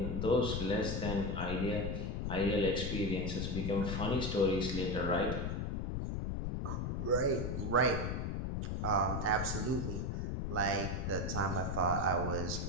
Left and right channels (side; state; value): left; noise; rumble, 1 dB below the sound